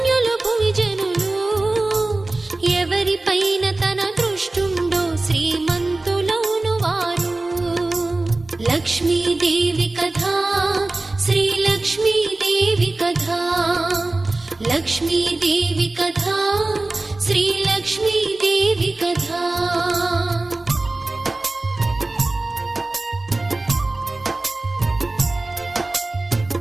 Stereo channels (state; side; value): quieter; left; 3.0 dB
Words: భువిజనులు, ఎవరిపైన తన దృష్టుండో శ్రీమంతులౌను వారు. లక్ష్మీదేవి కథా శ్రీ లక్ష్మీదేవి కథా, లక్ష్మీదేవి కథా శ్రీ లక్ష్మీదేవి కథా.